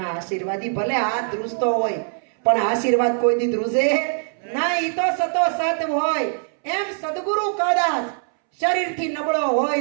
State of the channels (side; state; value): left; silent; 64 dB below the other